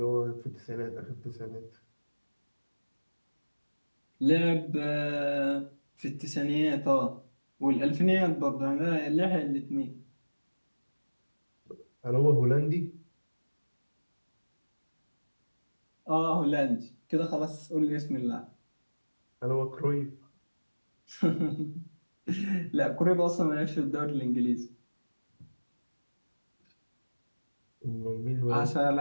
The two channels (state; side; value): inverted; both; correlation -1.00